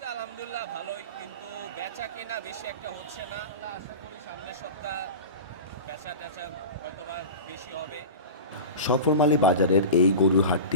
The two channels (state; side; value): inverted; both; correlation -0.30